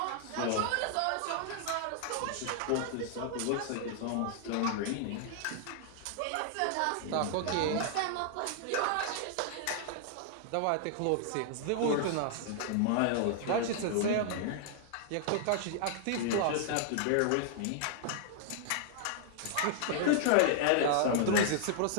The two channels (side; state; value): both; different; correlation -0.01